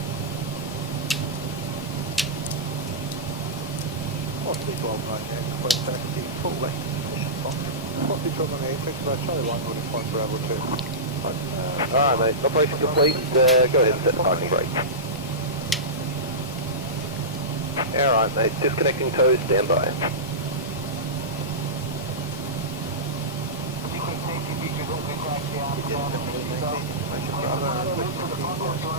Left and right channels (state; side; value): normal; both; correlation -0.17